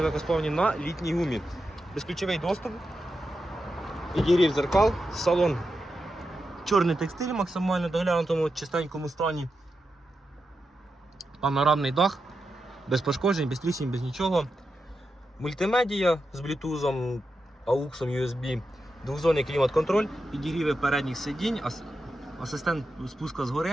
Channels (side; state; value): both; normal; correlation 0.88